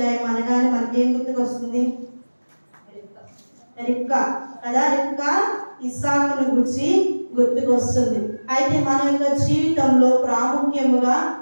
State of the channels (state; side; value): inverted; both; correlation -1.00